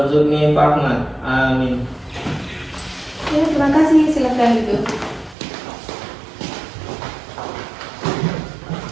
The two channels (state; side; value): drops out; left; at 5.4 s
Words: fahma. Amin. Ya, terima kasih. Silakan duduk.